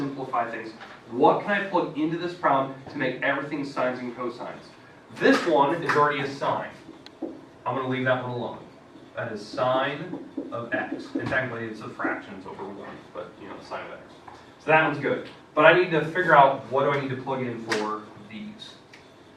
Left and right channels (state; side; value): identical; both; correlation 1.00